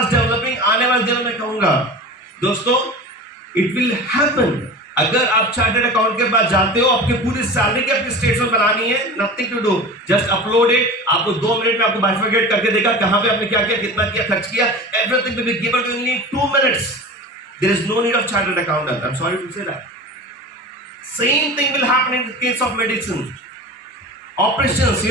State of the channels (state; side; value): normal; both; correlation 0.34